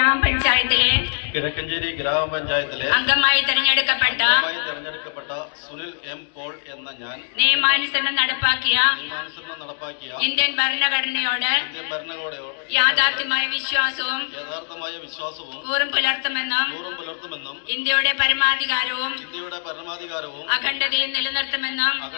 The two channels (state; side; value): silent; right; digital silence